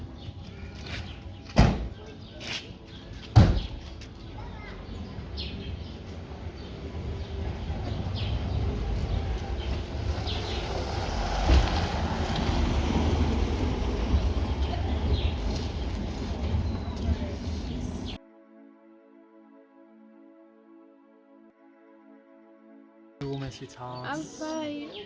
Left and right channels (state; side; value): identical; both; correlation 1.00